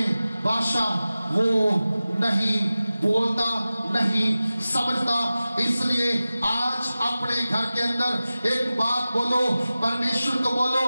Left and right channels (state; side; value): inverted; both; correlation -0.96